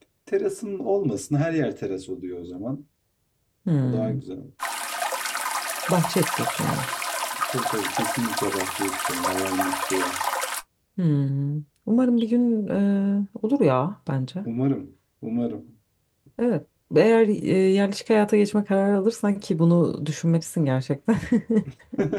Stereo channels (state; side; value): identical; both; correlation 1.00